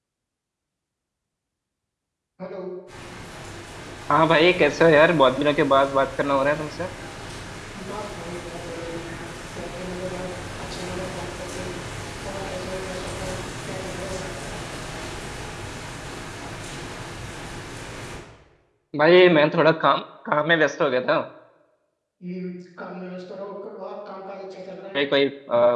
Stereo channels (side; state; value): both; identical; correlation 1.00